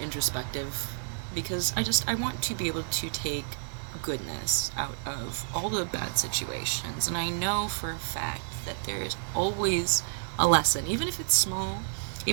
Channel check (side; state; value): left; silent; digital silence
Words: introspective, because I want to be able to take goodness out of all the bad situations. And I know for a fact that there is always a lesson, even if it's small,